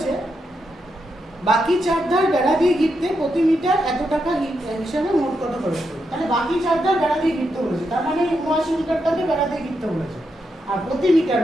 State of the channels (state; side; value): normal; both; correlation 0.83